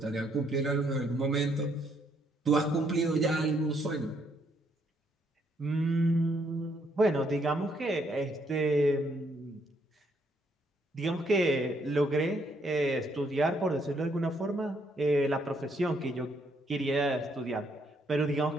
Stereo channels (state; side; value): normal; both; correlation 0.71